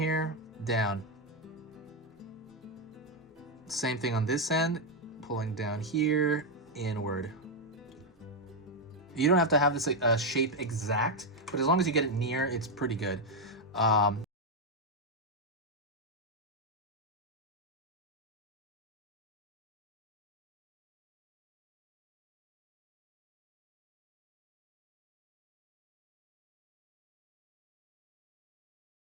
down. Same thing on this end, pulling down here, inward. You don't have to have this shape exact, but as long as you get it near, it's pretty good.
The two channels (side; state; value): both; normal; correlation 0.03